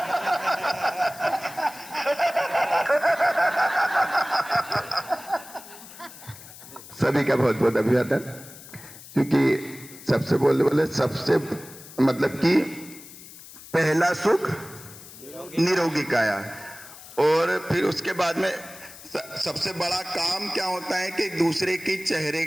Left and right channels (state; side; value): noise; left; hiss, 17 dB below the sound